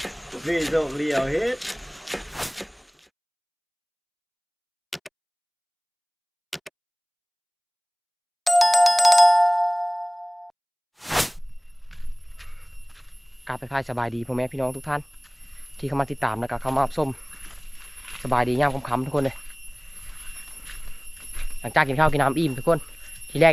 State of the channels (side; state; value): both; identical; correlation 1.00